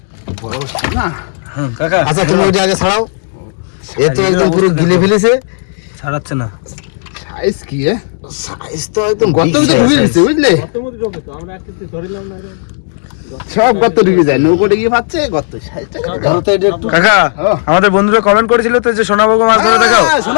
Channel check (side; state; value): right; silent; digital silence